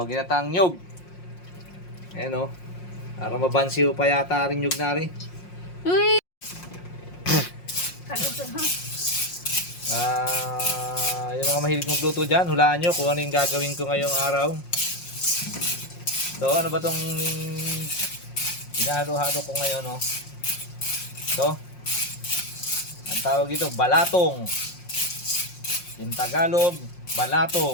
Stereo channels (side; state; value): right; late; 5.6 ms